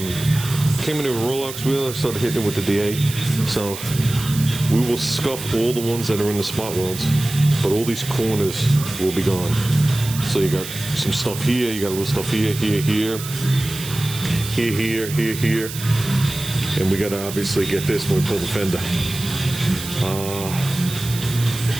Came in with a Rolex wheel. I started hitting it with the DA. So we will scuff all the ones that are in the spot welds, but all these corners will be gone. So you got some stuff here, you got a little stuff here, here, and we got to obviously get this when we pull the fender.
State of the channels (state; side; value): noise; right; hiss, 10 dB below the sound